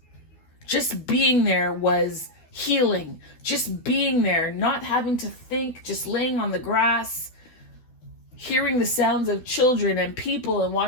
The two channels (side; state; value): right; late; 12 ms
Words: Just being there was healing. Just being there, not having to think, just laying on the grass, hearing the sounds of children and people and